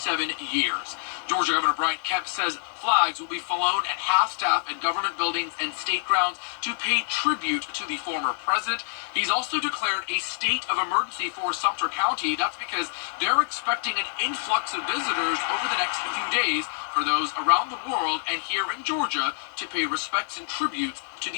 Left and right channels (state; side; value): silent; right; digital silence